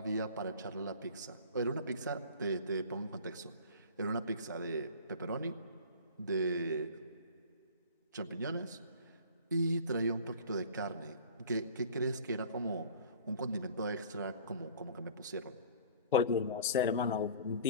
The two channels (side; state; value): both; inverted; correlation -0.44